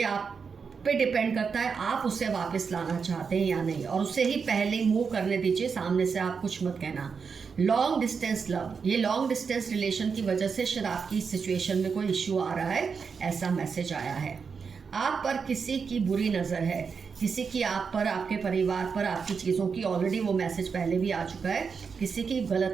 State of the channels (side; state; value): left; quieter; 5.7 dB